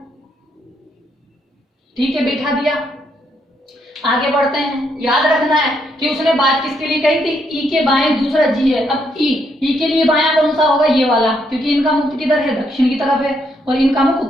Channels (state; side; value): normal; both; correlation 0.75